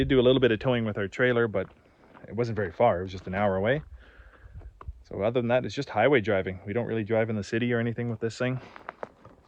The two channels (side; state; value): both; identical; correlation 1.00